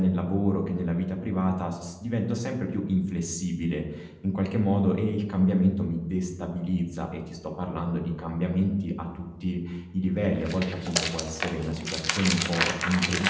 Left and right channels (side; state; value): both; identical; correlation 1.00